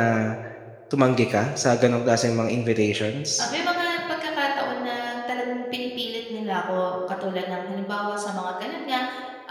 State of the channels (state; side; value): identical; both; correlation 1.00